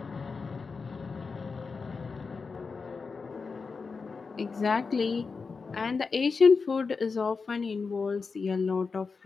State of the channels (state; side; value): quieter; right; 4.8 dB